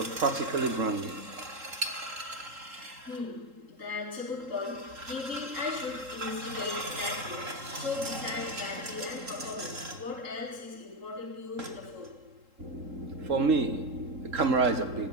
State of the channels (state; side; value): late; left; 3.8 ms